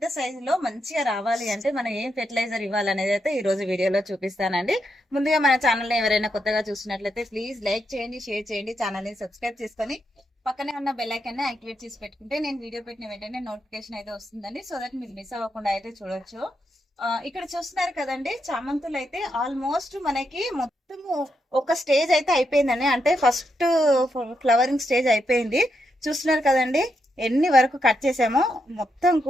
సైజులో మంచిగా రావాలి అంటే మనం ఏం ఫెర్టిలైజర్ ఇవ్వాలనేది అయితే ఈ రోజు వీడియోలో చూపిస్తానండి. ముందుగా మన ఛానల్ ఎవరైనా కొత్తగా చూసినట్లయితే ప్లీజ్ లైక్ చేయండి, షేర్ చేయండి, ఛానల్ ని సబ్స్క్రైబ్ చేసుకొని పక్కనే ఉన్న బెల్ ఐకాన్ ని యాక్టివేట్ చేసి పెట్టుకుంటే నేను వీడియో పెట్టిన వెంటనే నోటిఫికేషన్ అయితే వస్తుందండి. సో దట్ మీరు మిస్ అవ్వకుండా అయితే చూడొచ్చు. ఇక్కడ చూస్తున్నారు కదండి, చామంతులు అయితే ఆల్మోస్ట్ మనకి మొత్తము ఒక స్టేజ్ అయితే అయిపోయిందండి. అంటే ఫస్ట్ ఫ్లవరింగ్ స్టేజ్ అయిపోయింది. చూస్తున్నారు కదండి ఎన్ని వరకు కట్ చేసామో. మొత్తం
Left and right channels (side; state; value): both; normal; correlation 0.82